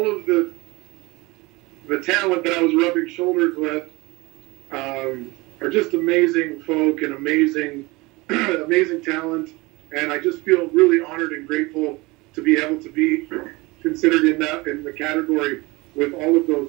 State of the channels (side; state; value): left; quieter; 23.2 dB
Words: of the talent that I was rubbing shoulders with are just amazing folk and amazing talent, and I just feel really honored and grateful to be able to be considered in the category with all of